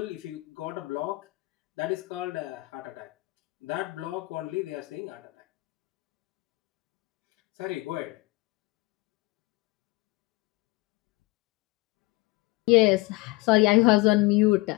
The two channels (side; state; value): right; quieter; 22.5 dB